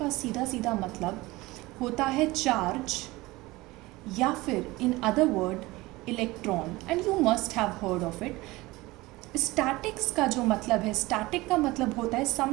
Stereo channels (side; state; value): left; quieter; 20.5 dB